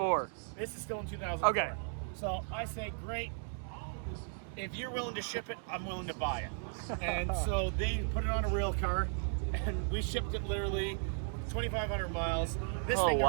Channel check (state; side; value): silent; left; 54 dB below the other